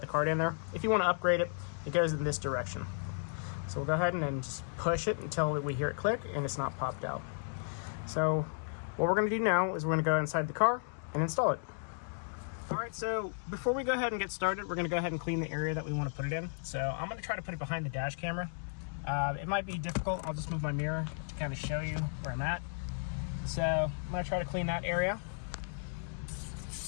card in there, if you want to upgrade it, it goes in this direction. So we'll go ahead and then just push it until we hear it click and it's not popped out. So what we're going to do now is we're going to go inside the car and install it. Alright, so before we go ahead and get started, we're going to go ahead and clean the area that we want to put it in. So I'm going to try to put it behind the dash camera. It might be difficult. I'll just move my mirror to kind of show you where I'm at. So I'm going to try to clean that area.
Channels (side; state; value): right; silent; digital silence